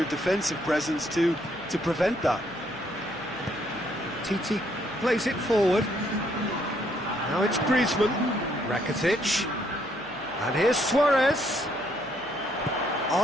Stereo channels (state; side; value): noise; left; hum, 27 dB below the sound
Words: defensive presence to prevent that. Titi plays it forward. Now it's Griezmann. Rakitic. And here's Suarez.